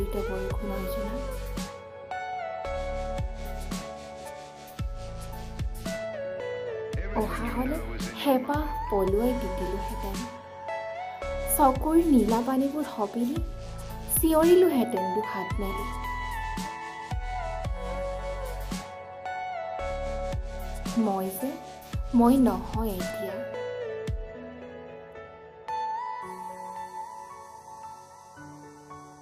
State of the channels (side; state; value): both; identical; correlation 1.00